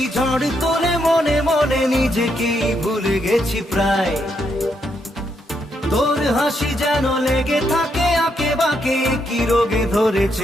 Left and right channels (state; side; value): normal; both; correlation 0.78